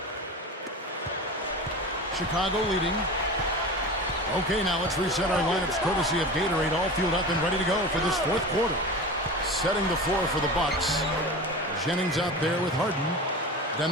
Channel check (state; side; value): normal; both; correlation 0.30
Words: Chicago leading. Okay, now let's reset our lineups courtesy of Gatorade, all fueled up and ready to go for this 4th quarter. Setting the floor for the Bucks. Jennings out there with Harden.